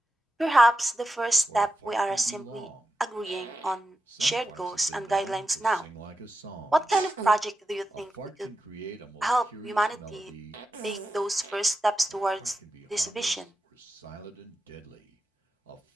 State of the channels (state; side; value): normal; both; correlation 0.90